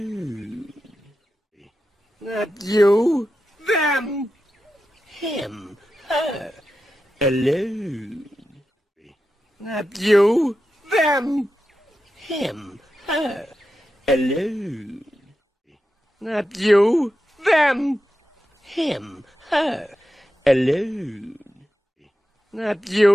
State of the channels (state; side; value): normal; both; correlation 0.90